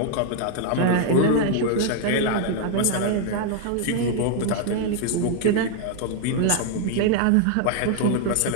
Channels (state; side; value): different; both; correlation 0.00